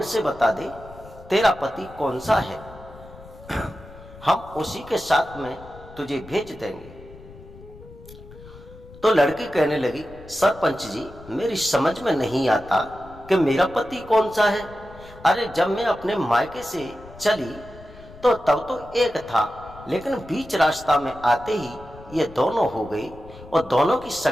से बता दे तेरा पति कौन सा है, हम उसी के साथ में तुझे भेज देंगे। तो लड़की कहने लगी, सरपंच जी, मेरी समझ में नहीं आता कि मेरा पति कौन सा है। अरे जब मैं अपने मायके से चली तो तब तो एक था, लेकिन बीच रास्ता में आते ही ये दोनों हो गई, और दोनों की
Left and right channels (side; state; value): left; noise; rumble, 19 dB below the sound